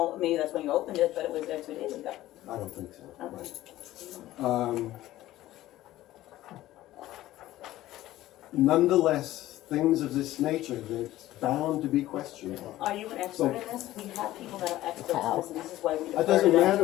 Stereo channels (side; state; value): right; quieter; 15.3 dB